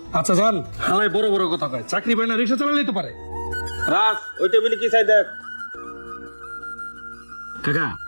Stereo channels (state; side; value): inverted; both; correlation -1.00